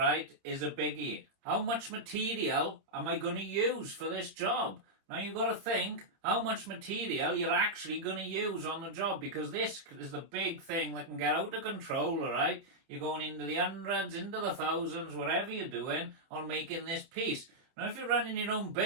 is a biggie. How much material am I going to use for this job? Now you've got to think how much material you're actually going to use on the job, because this is the big thing that can get out of control, all right? You're going into the hundreds, into the thousands, whatever you're doing on making this piece. Now, if you're running your own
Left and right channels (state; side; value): late; left; 30 ms